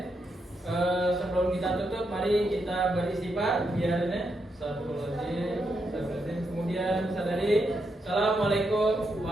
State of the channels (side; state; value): both; normal; correlation 0.82